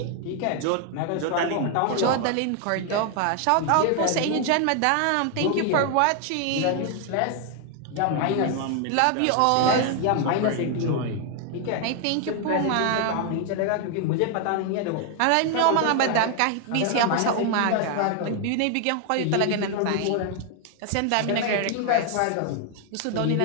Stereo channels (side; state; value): both; different; correlation 0.00